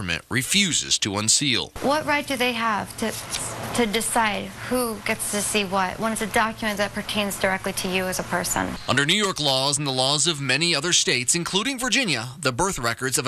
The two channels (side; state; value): both; identical; correlation 1.00